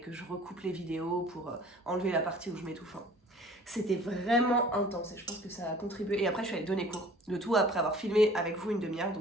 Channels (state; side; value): normal; both; correlation 0.49